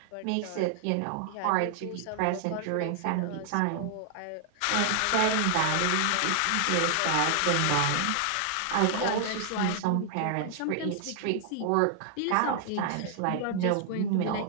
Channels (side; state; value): both; different; correlation 0.00